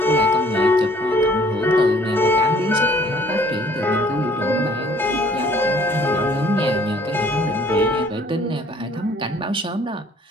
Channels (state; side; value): normal; both; correlation 0.58